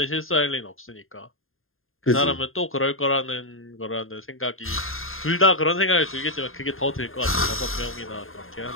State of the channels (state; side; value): late; right; 0.60 ms